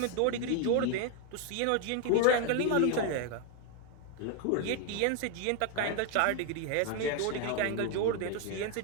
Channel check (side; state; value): both; different; correlation 0.01